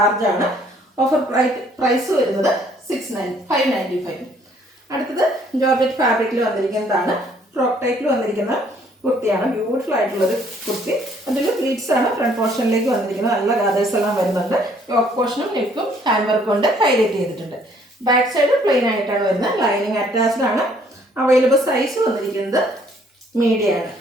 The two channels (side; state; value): both; normal; correlation 0.63